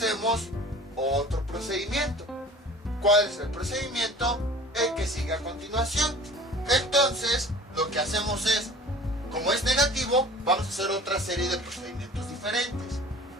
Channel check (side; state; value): both; normal; correlation 0.44